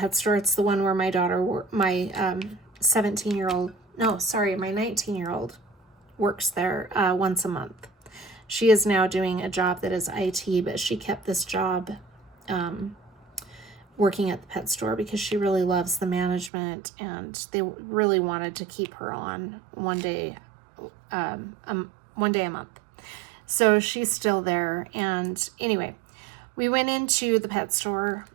store. It's the one where my daughter, my 19-year-old works there once a month. She is now doing a job that is IT, but she kept this job working at the pet store because she really loves the management, and they really wanted to keep her on one day a month. So she's still there. And anyway, we went into the pet store,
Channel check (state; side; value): drops out; left; at 16.5 s